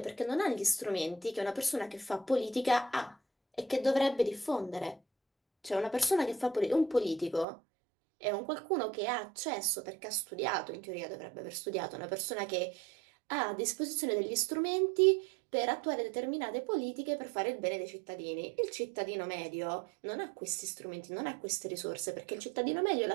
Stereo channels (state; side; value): drops out; left; at 7.5 s